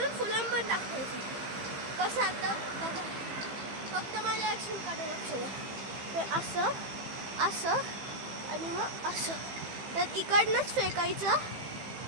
फुल आर्म पण टाकायचं. कसं आता बघा, फक्त माझ्या ॲक्शनकडे लक्ष द्या. ते असं आणि मग असं तर इकडनंच फेकायचं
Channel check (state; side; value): late; left; 15 ms